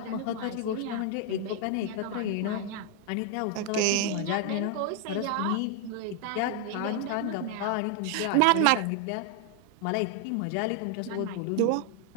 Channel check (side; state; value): both; different; correlation 0.00